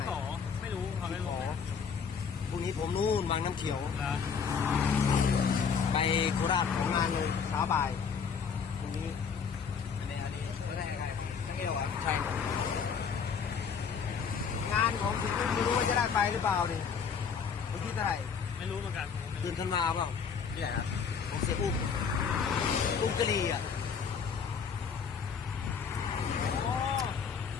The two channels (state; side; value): quieter; right; 6.3 dB